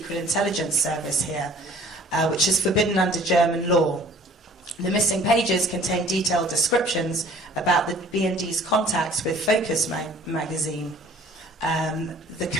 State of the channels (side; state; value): both; normal; correlation 0.52